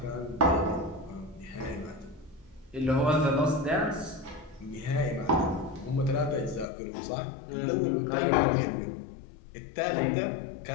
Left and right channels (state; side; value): drops out; right; at 6.7 s